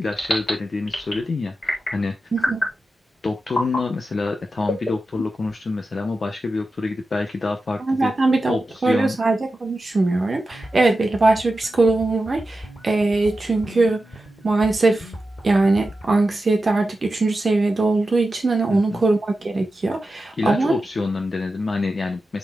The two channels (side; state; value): both; normal; correlation 0.92